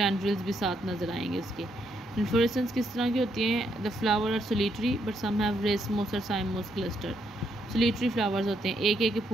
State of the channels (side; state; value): both; normal; correlation 0.76